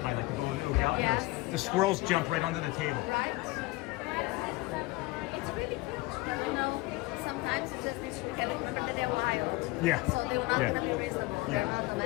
like the Golden Oak Outpost. Yes. The squirrels jump right onto the table. Right? Yeah. It's really cute. You know, sometimes it just needs to be careful. Remember that they're wild. Yeah. So they're not going to be reasonable. Yeah. They're not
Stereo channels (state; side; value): quieter; right; 20.9 dB